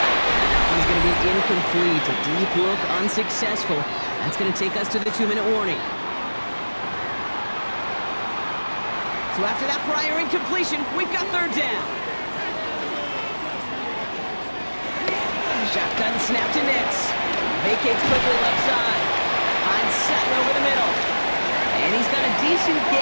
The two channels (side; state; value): both; inverted; correlation -1.00